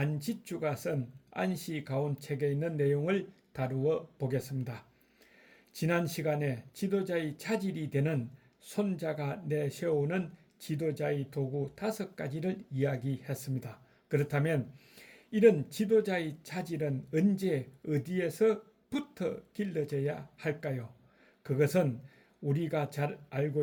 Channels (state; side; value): identical; both; correlation 1.00